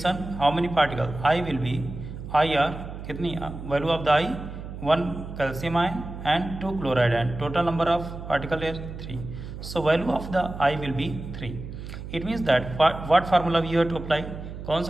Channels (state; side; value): noise; right; hum, 10 dB below the sound